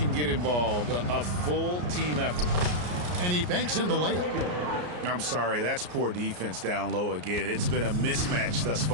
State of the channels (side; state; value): left; late; 33 ms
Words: get involved, a full team effort. And he banks in the layup. I'm sorry, that's poor defense down low again. It's been a mismatch thus